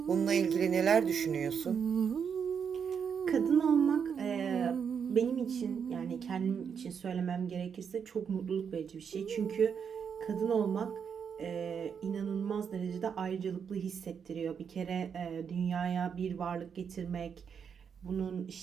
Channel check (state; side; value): quieter; left; 7.0 dB